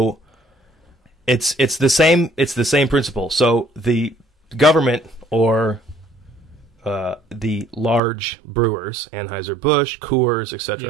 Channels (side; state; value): left; drops out; at 8.0 s